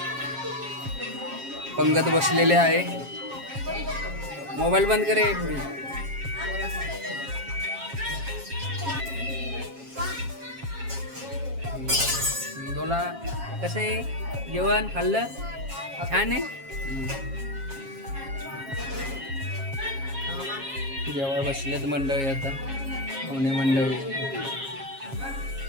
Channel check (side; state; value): left; late; 7.4 ms